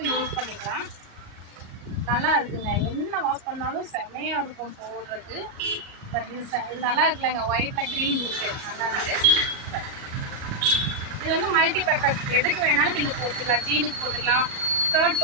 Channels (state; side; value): late; left; 38 ms